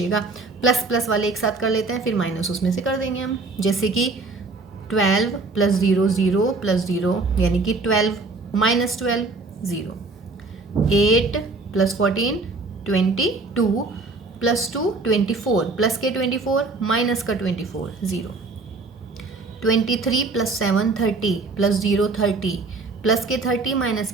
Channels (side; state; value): left; quieter; 3.7 dB